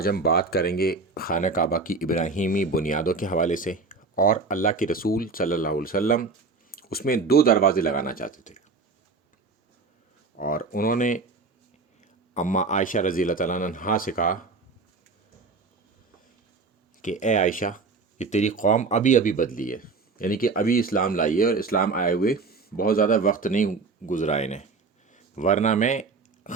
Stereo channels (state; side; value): quieter; left; 4.2 dB